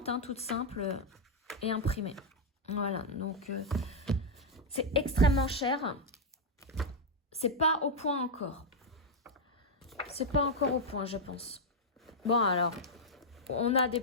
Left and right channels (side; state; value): both; normal; correlation -0.01